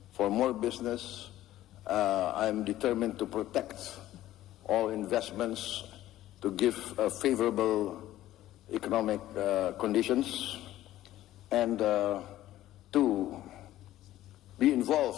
for more business. I'm determined to protect all investments, to give favorable economic conditions, and to be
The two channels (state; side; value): quieter; right; 14.2 dB